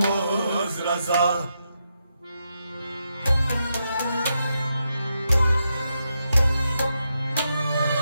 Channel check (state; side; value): inverted; both; correlation -0.84